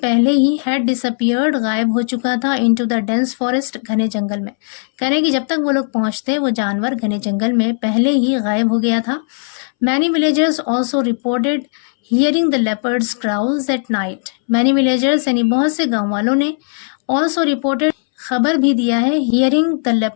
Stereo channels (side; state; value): right; silent; 66 dB below the other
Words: पहले ही had disappeared गायब हो चुका था, into the dense forest घने जंगल में, कह रहे कि जब तक वो लोग पहुंचते वो जानवर घने जंगल में पहले ही गायब हो गया था। many villagers also reported hearing the leopards growls at night। many villagers यानी बहुत से गांव वालों ने also reported खबर भी दिया है hearing the